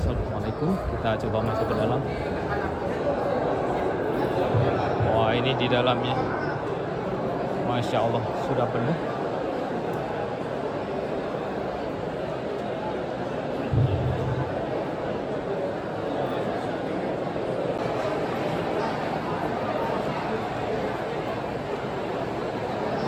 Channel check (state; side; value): identical; both; correlation 1.00